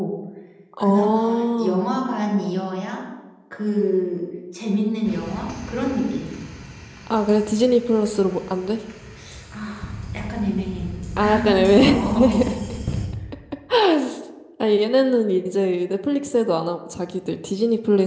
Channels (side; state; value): both; identical; correlation 1.00